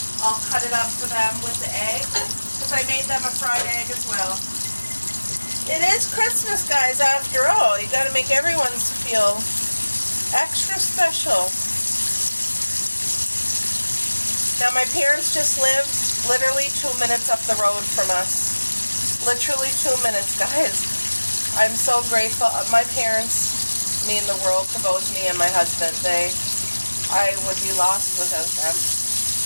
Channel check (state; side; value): inverted; both; correlation -1.00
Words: I'll cut it up for them with the egg. Because I made them a fried egg as well. It is Christmas, guys, after all. You got to make everyone's feel extra special. Now my parents just lived literally 2 minutes up the road from us. Literally 2 minutes, guys. I'm so grateful. My parents mean the world to both me and my husband. I would be lost without them.